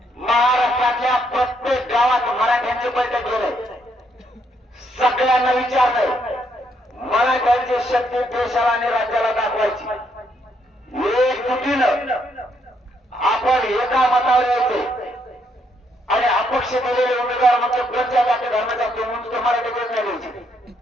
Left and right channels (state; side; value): normal; both; correlation 0.74